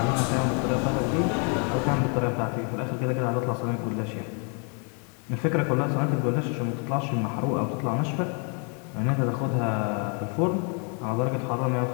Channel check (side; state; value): right; quieter; 38.6 dB